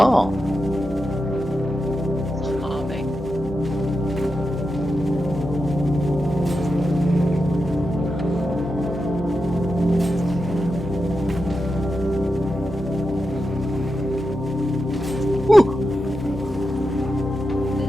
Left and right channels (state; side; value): noise; left; hum, 16 dB below the sound